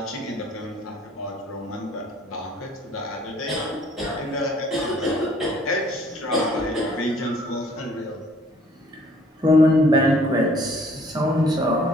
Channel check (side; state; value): both; normal; correlation 0.58